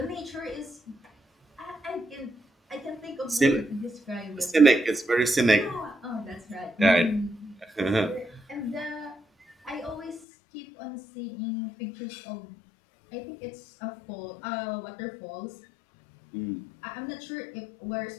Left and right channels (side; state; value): right; drops out; at 10.2 s